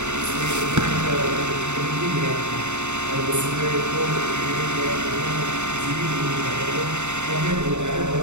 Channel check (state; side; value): late; left; 0.83 ms